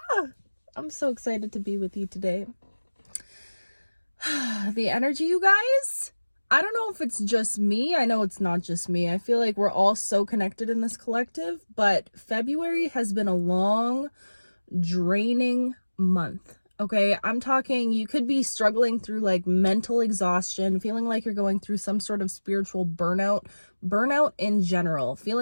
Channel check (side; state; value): both; inverted; correlation -1.00